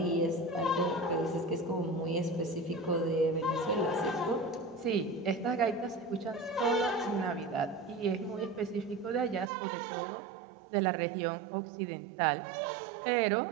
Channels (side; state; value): left; drops out; at 9.5 s